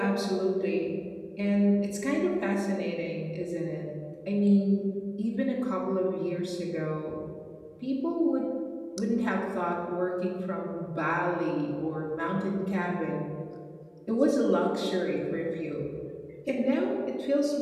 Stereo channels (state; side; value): identical; both; correlation 1.00